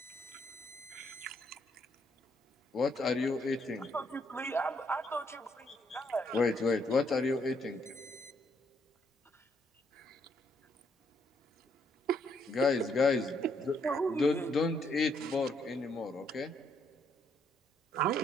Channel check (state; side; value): normal; both; correlation 0.72